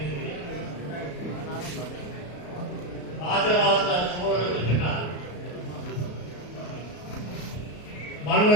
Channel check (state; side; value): late; right; 34 ms